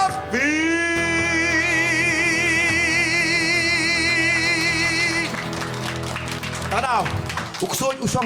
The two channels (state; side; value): identical; both; correlation 1.00